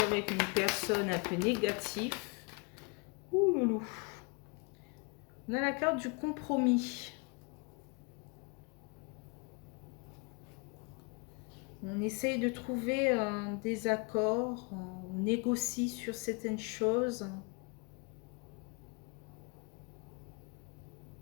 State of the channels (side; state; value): right; quieter; 31.4 dB